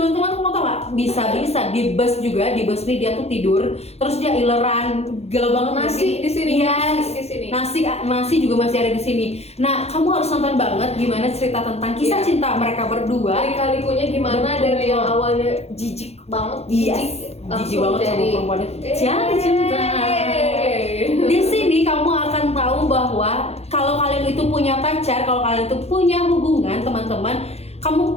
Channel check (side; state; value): right; late; 0.30 ms